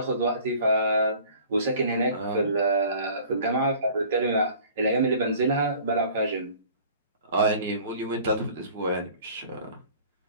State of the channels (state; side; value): inverted; both; correlation -0.48